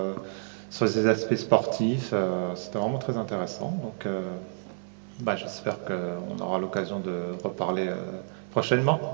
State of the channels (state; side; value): silent; left; 59 dB below the other